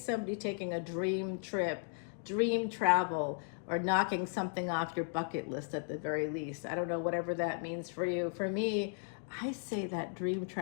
taking a dream trip, dream travel, or knocking something off your bucket list at the very least. I don't know, whatever that means for you. For me, I say that dream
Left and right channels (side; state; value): right; silent; 54 dB below the other